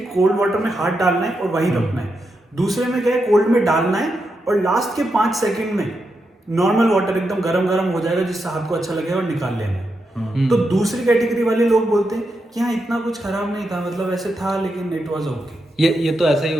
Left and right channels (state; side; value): normal; both; correlation 0.85